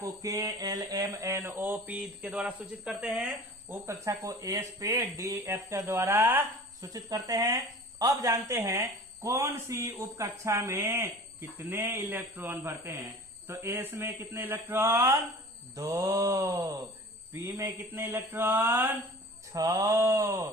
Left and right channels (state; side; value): normal; both; correlation 0.42